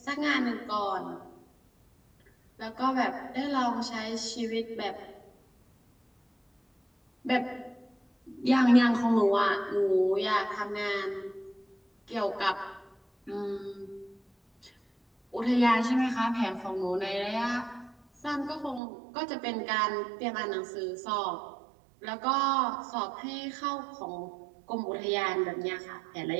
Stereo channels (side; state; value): left; drops out; at 18.8 s